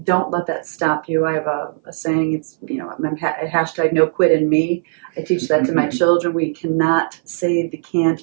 Don't let that stop you. I have a saying, it's, hashtag no quit in me. I teach that to my children. We cannot say the can't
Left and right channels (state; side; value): silent; left; 59 dB below the other